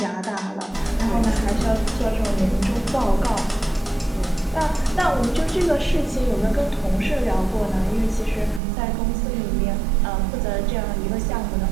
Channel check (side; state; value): left; drops out; at 8.6 s